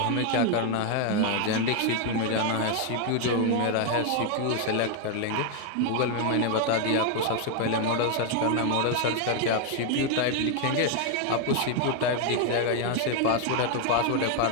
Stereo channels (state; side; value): different; both; correlation 0.01